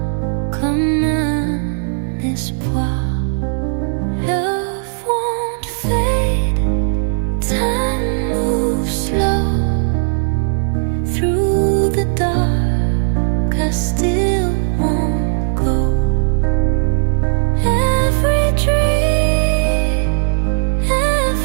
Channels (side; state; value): left; silent; digital silence